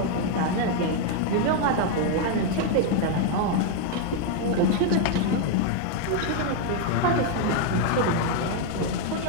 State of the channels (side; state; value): both; different; correlation 0.01